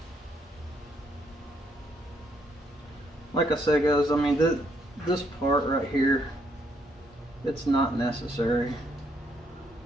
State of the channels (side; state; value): both; normal; correlation 0.72